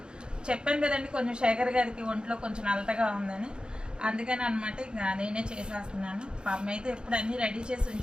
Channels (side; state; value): left; late; 0.050 ms